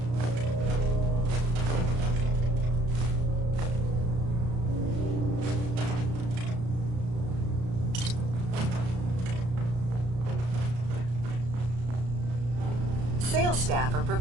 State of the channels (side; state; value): left; late; 34 ms